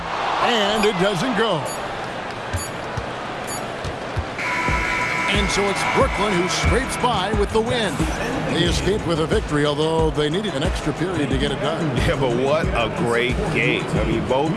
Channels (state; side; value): identical; both; correlation 1.00